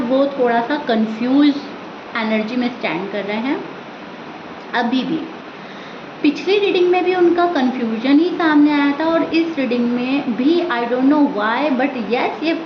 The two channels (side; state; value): both; identical; correlation 1.00